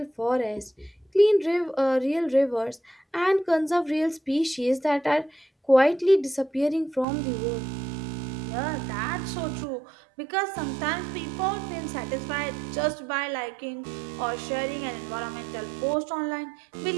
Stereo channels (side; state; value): left; drops out; at 7.1 s